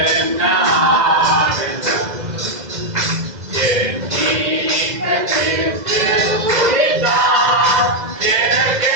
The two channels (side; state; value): left; late; 2.0 ms